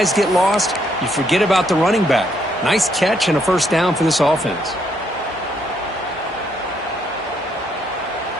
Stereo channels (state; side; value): normal; both; correlation 0.72